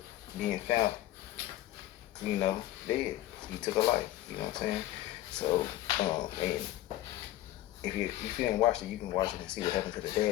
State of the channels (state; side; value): quieter; right; 14.6 dB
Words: being found, you know, dead. He took her life, you know what I'm saying? So, and if you didn't watch it, you can watch it and see what happened to the